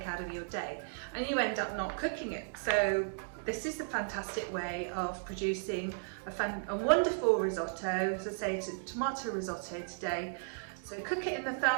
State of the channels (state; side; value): silent; left; digital silence